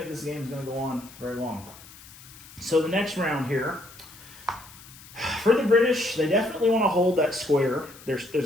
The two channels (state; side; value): noise; left; hiss, 20 dB below the sound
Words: this game is going to go on very long. So the next round here, for the British, they definitely want to hold that square. There's